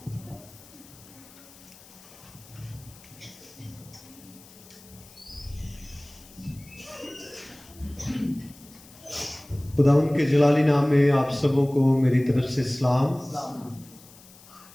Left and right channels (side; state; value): left; noise; hiss, 22 dB below the sound